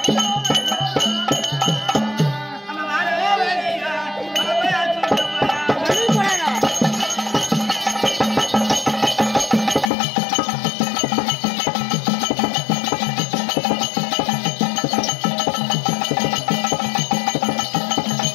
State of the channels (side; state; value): right; drops out; at 9.9 s